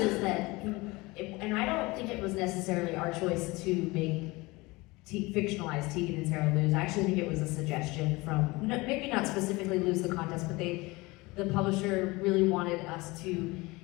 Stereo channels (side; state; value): right; quieter; 22.9 dB